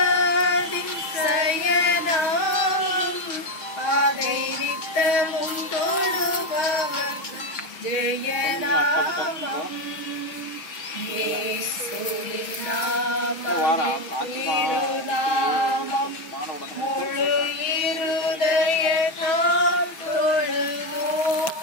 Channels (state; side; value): late; right; 6.3 ms